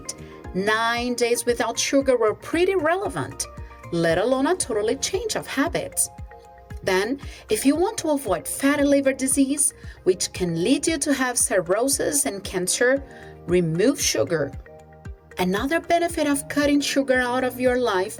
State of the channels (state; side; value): identical; both; correlation 1.00